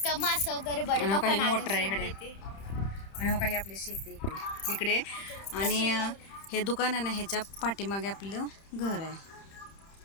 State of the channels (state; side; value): late; right; 30 ms